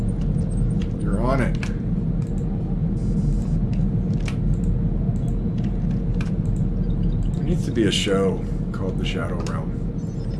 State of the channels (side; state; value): both; identical; correlation 1.00